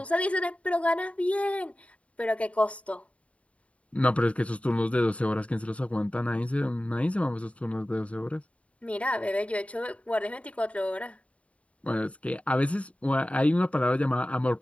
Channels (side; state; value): right; late; 0.065 ms